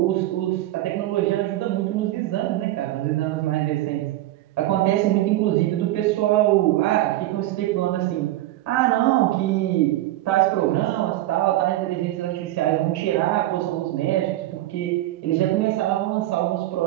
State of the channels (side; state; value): left; quieter; 15.6 dB